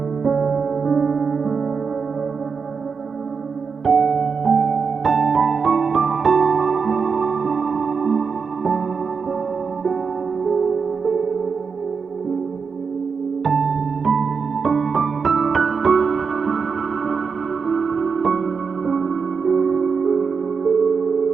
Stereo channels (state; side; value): quieter; left; 5.5 dB